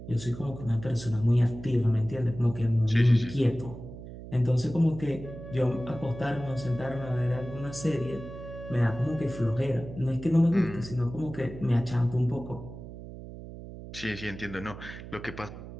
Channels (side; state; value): right; noise; hum, 12 dB below the sound